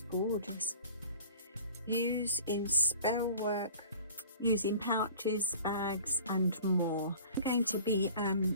gorgeous. Use in spell work, use in pouches, bags and more. I'm going to be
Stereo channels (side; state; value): both; inverted; correlation -0.44